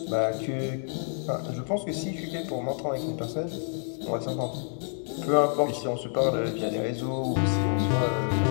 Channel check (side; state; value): right; silent; 59 dB below the other